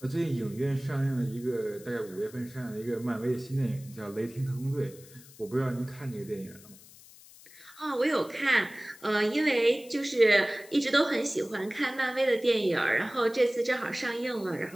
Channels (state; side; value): noise; left; hiss, 21 dB below the sound